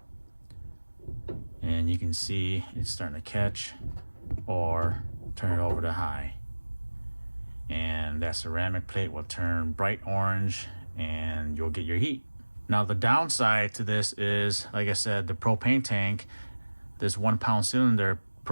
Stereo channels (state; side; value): inverted; both; correlation -1.00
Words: And you can see it's starting to catch, or turn it over to high. And that ceramic plate will turn bright orange and you'll get your heat. Now the downside to this is, like I said, the propane tank, this 1 pound cylinder